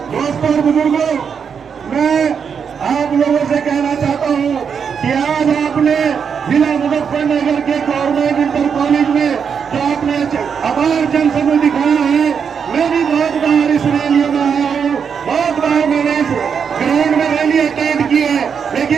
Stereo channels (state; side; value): quieter; left; 6.8 dB